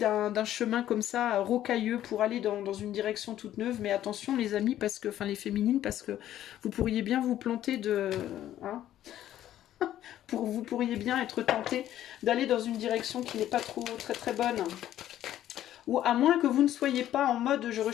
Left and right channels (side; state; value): right; quieter; 12.3 dB